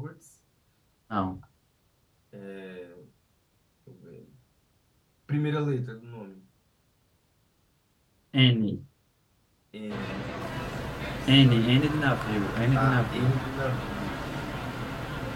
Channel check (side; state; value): both; identical; correlation 1.00